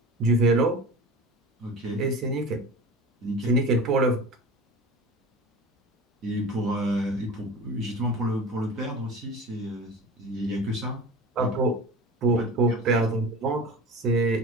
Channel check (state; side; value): normal; both; correlation 0.34